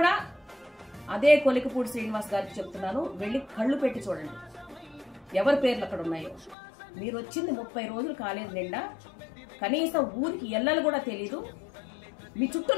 అదే కొలికపూడి శ్రీనివాస్ గారికి చెప్తున్నాను, వెళ్ళి కళ్ళు పెట్టి చూడండి ఎవరి పేర్లు అక్కడ ఉన్నాయో. మీరు వచ్చింది 30 రోజులు కాలేదు నిండా, కనీసం ఊరికి ఎల్లలు కూడా తెలీదు. మీ చుట్టూ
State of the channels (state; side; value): drops out; right; at 6.6 s